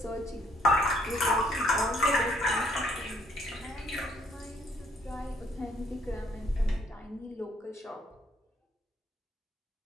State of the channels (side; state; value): both; normal; correlation 0.66